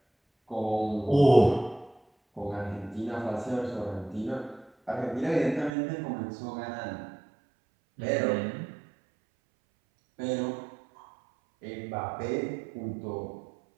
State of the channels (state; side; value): drops out; left; at 5.7 s